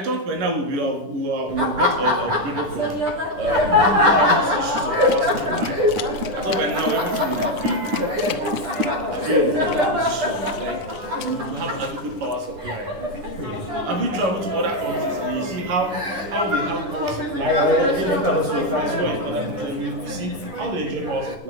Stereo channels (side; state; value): left; late; 10 ms